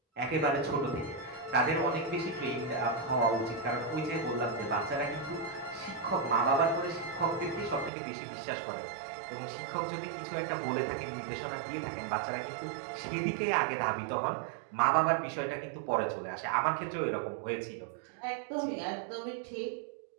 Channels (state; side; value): drops out; left; at 7.9 s